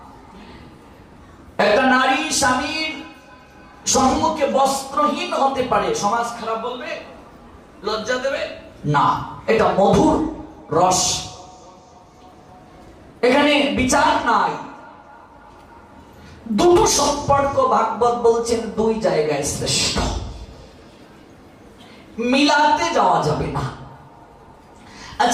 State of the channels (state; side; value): identical; both; correlation 1.00